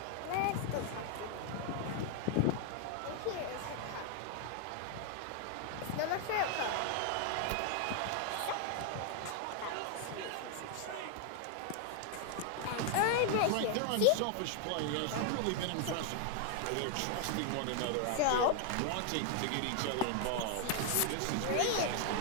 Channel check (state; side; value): different; both; correlation 0.00